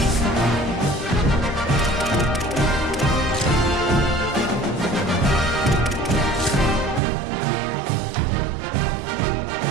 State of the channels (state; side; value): drops out; left; at 7.0 s